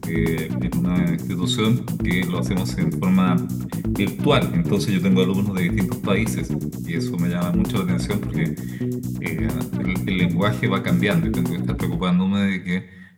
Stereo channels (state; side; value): identical; both; correlation 1.00